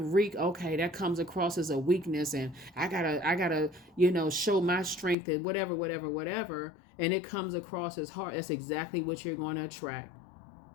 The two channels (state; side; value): drops out; right; at 5.2 s